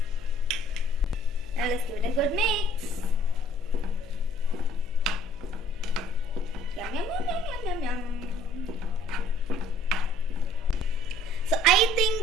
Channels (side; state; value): left; noise; hum, 23 dB below the sound